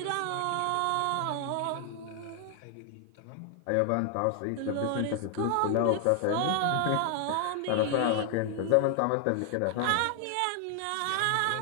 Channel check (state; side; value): different; both; correlation 0.00